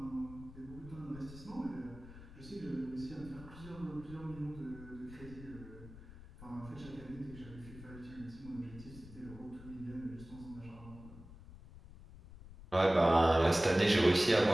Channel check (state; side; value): noise; left; rumble, 17 dB below the sound